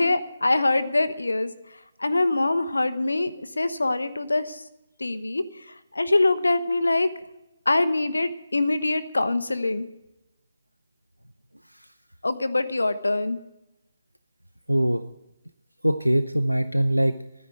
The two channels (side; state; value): both; inverted; correlation -0.96